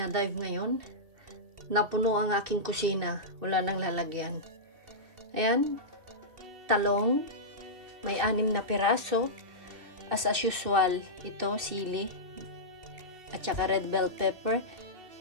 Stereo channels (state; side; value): late; left; 2.6 ms